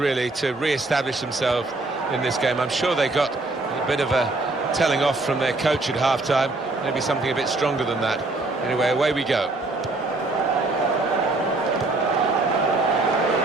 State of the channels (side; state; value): left; quieter; 3.1 dB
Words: to re-establish themselves in this game. I'm sure they got a bit of a telling off from their coach at half-time, maybe something a bit stronger than that. Anyway, away we go.